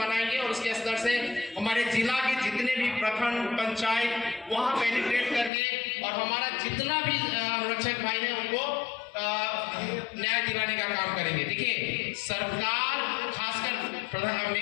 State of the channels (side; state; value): right; drops out; at 5.5 s